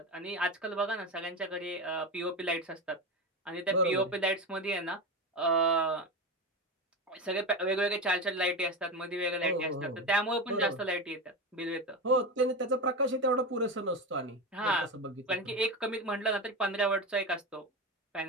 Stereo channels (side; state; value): both; normal; correlation 0.19